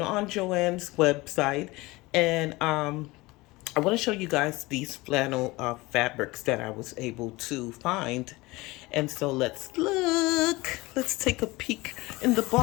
on Joann's website, and I want to show you guys these flannel fabrics that I was able to find. And so let's look. Let's take a peek in the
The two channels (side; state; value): right; quieter; 21.6 dB